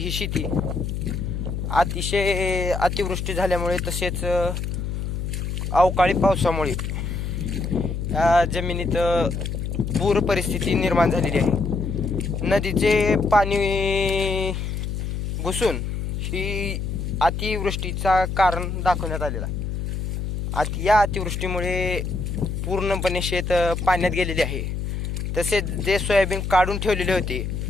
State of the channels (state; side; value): noise; left; hum, 3 dB below the sound